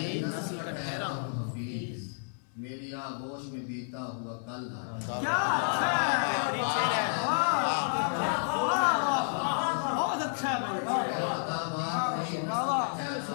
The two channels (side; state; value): right; silent; 57 dB below the other